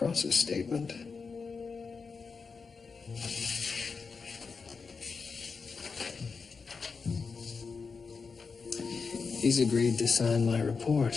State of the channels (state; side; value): quieter; right; 5.0 dB